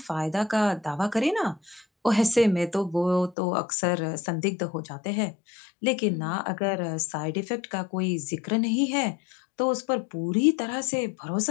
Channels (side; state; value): right; drops out; at 3.4 s